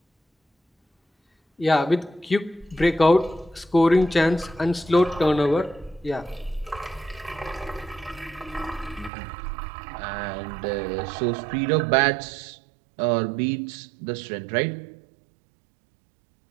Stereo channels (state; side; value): drops out; left; at 9.1 s